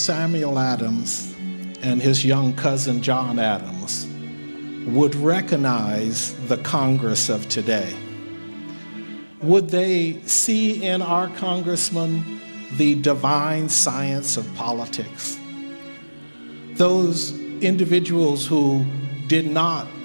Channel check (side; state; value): both; inverted; correlation -1.00